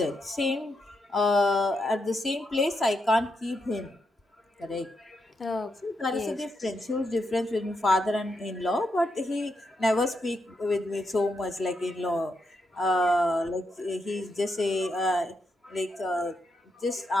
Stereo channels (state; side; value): normal; both; correlation 0.83